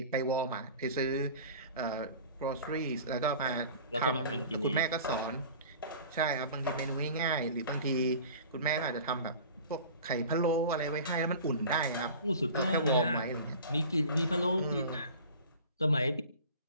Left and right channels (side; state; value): both; inverted; correlation -0.41